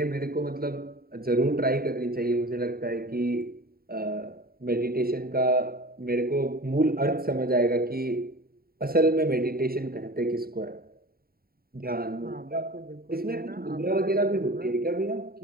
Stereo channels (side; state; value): left; late; 0.43 ms